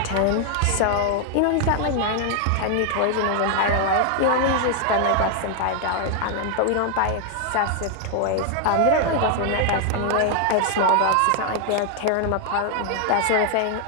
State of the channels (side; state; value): both; different; correlation 0.00